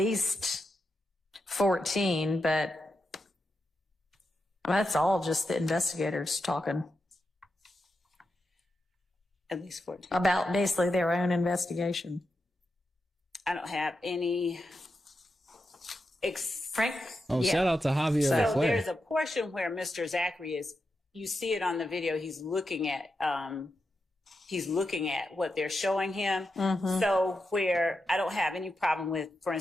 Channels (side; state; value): both; normal; correlation 0.87